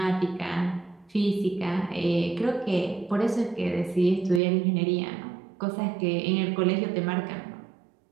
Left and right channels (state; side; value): drops out; left; at 4.4 s